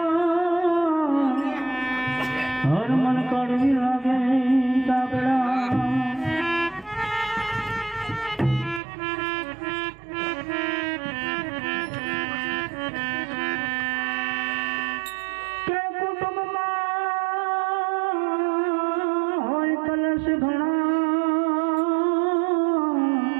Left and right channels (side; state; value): left; drops out; at 8.8 s